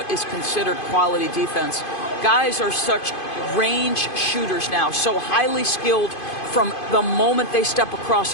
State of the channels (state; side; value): late; right; 2.5 ms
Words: is considered quality defense. Guys are such range shooters now, so highly skilled from the moment they step across